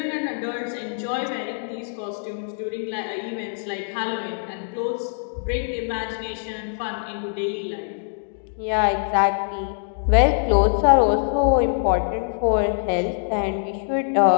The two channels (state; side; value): silent; right; digital silence